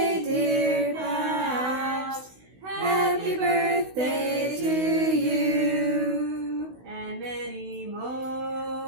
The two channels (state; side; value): late; left; 16 ms